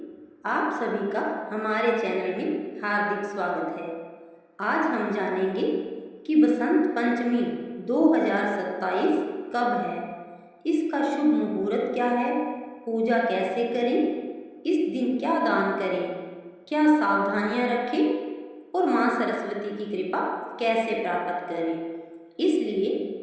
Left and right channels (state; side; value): identical; both; correlation 1.00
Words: आप सभी का हमारे चैनल में हार्दिक स्वागत है। आज हम जानेंगे कि बसंत पंचमी 2027 कब है, इसका शुभ मुहूर्त क्या है, पूजा कैसे करें, इस दिन क्या दान करें, क्या सावधानियां रखें और माँ सरस्वती की कृपा कैसे प्राप्त करें। इसलिए